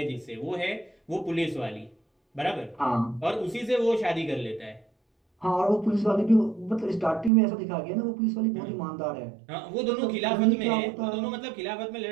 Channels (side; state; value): left; drops out; at 7.3 s